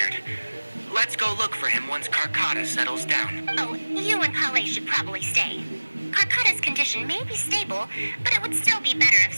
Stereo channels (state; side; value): inverted; both; correlation -1.00